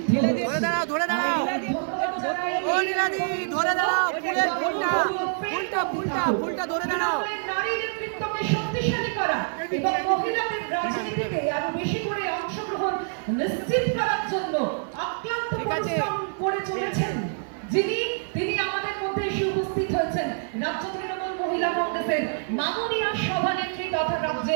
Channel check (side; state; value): left; silent; 61 dB below the other